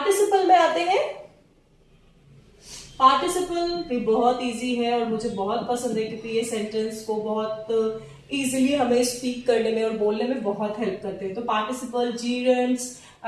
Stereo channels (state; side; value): identical; both; correlation 1.00